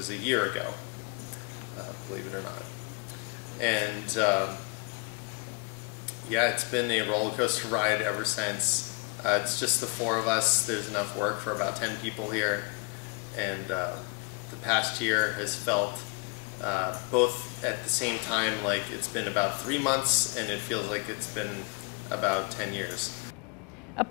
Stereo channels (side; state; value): right; quieter; 33.1 dB